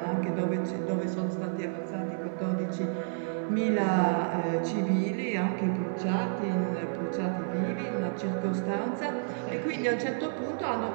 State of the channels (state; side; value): silent; left; digital silence